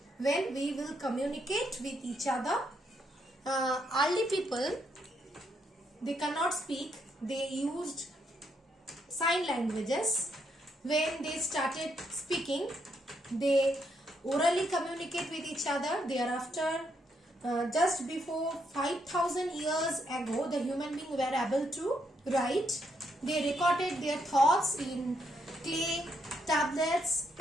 when we will communicate with each other. Early people, they cannot speak, they used sign languages. When they started speaking, they orally communicate with each other. Thereafter, just before 5,000 years ago, the human beings were able to write. They recorded their thoughts in clay, tablets,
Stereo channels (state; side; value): normal; both; correlation 0.76